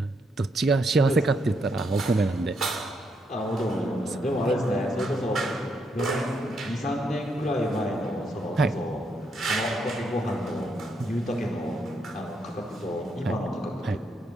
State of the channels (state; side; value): normal; both; correlation 0.77